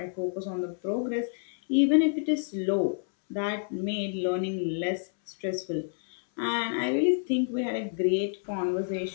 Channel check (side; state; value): right; silent; 59 dB below the other